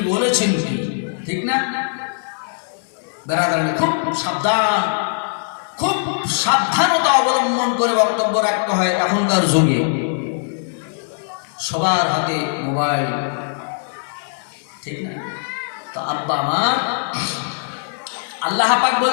বলেছেন কি, ঠিক না? বেরাদারানি খুব সাবধান, খুব সাবধানতা অবলম্বন করে বক্তব্য রাখতে হয়। এখনকার যুগে সবার হাতে মোবাইল, ঠিক না? তো আব্বা আমার আল্লাহ পাক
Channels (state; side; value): silent; right; digital silence